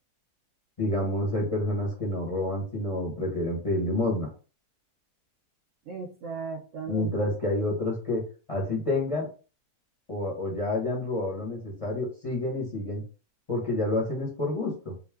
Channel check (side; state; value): both; normal; correlation 0.26